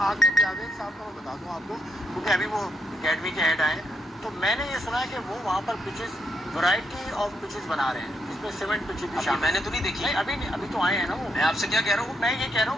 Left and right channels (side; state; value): both; normal; correlation 0.78